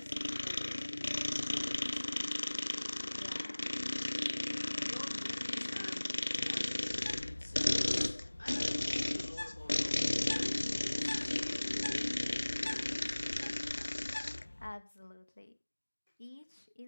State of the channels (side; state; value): both; inverted; correlation -1.00